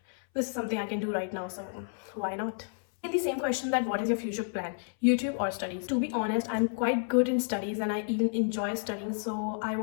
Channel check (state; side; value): silent; right; 57 dB below the other